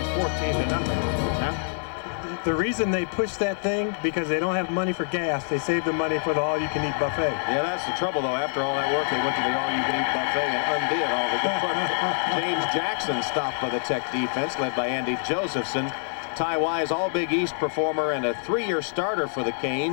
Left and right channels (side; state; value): right; silent; 61 dB below the other